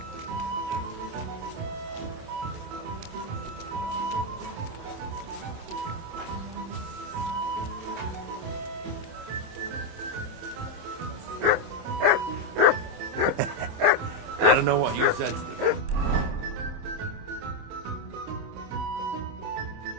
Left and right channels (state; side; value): late; left; 27 ms